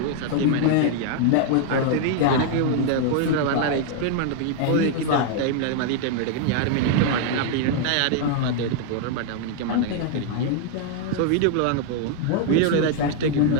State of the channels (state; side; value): different; both; correlation 0.00